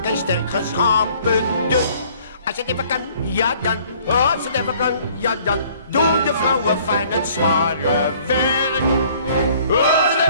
en sterk geschapen. Dus als het even kan, ja dan. Als het even kan, ja dan. Doen de vrouwen fijn het zware werk. Als het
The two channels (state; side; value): inverted; both; correlation -0.57